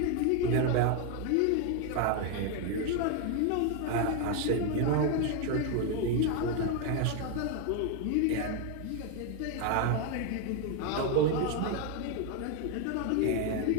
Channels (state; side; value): different; both; correlation 0.01